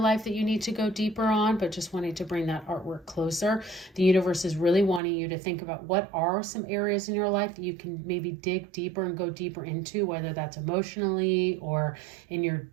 that you need to go deeper on, but just wanting to bring that artwork closer. The universe is really wanting you to think about what are some areas in your life that you can maybe dig deeper and go deeper into, whether that's emotionally or in your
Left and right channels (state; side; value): drops out; left; at 5.0 s